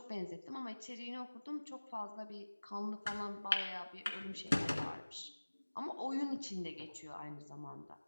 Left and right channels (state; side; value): inverted; both; correlation -1.00